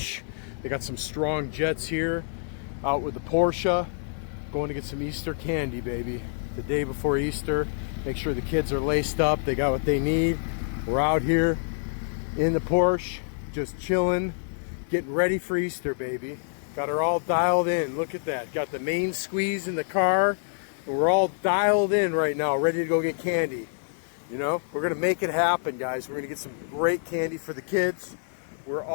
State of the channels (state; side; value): silent; right; digital silence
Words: They got some strong jets here. Out with the Porsche. Going to get some Easter candy, baby. The day before Easter. Make sure the kids are laced up. They got what they need. We're out here in the Porsche, just chilling, getting ready for Easter, baby. Got her all dialed in. Look at that. Got the main squeeze in the car. And we're all dialed in right now, ready to go get candy. You know, we're gonna make it happen, guys. We're gonna get some great candy for the kids. We're